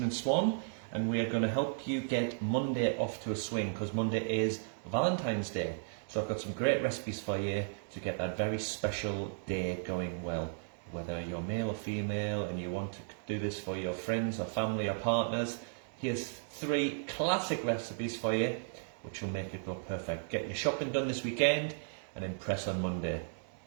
and Swan, and we are going to help you get Monday off to a swing because Monday is Valentine's Day. So I've got some great recipes for you to get that very special day going well. Whether you're male or female and you want to do this for your friends or family or partners, here's 3 classic recipes for you which will make it go perfect. Get your shopping done this weekend and impress on Monday.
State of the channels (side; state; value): left; silent; digital silence